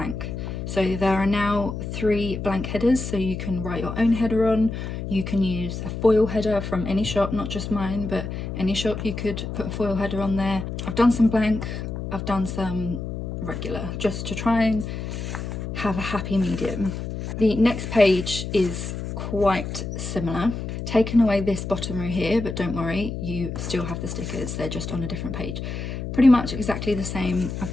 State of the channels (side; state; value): left; noise; hum, 6 dB below the sound